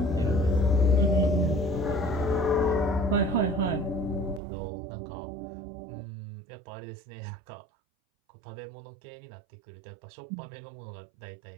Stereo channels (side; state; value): left; drops out; at 4.4 s